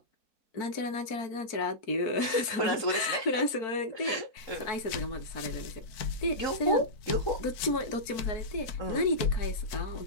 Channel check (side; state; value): right; late; 4.5 ms